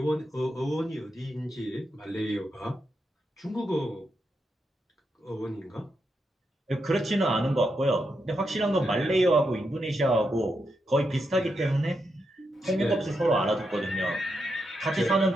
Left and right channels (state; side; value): normal; both; correlation 0.84